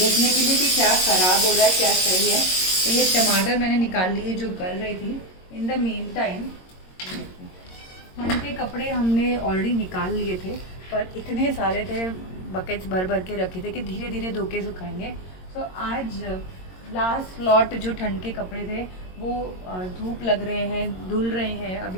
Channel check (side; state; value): right; late; 22 ms